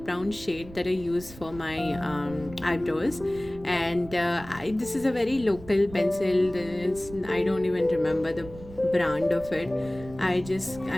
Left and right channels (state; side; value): noise; right; rumble, 17 dB below the sound